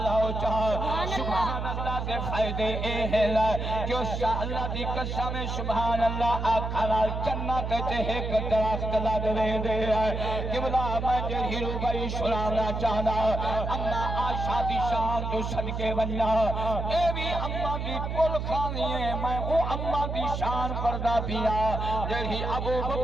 چاہ سبحان اللہ دے فائدے اے ہے کہ اس شاہ اللہ دی قسم سبحان اللہ آکھالا جنت تے ایک درخت لگ رہے دے قبلہ میں جرہی روبائی سلانا چاہنا اما آشا دی شان تو صدقے بننا اے بھی اما دی کل خانی ہے میں او اما دی شان پردہ پیا جرہی ابو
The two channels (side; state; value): right; noise; hum, 3 dB below the sound